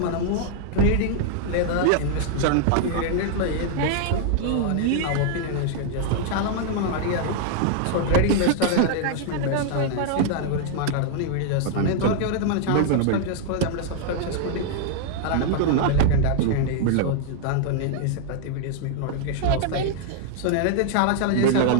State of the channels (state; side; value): different; both; correlation 0.00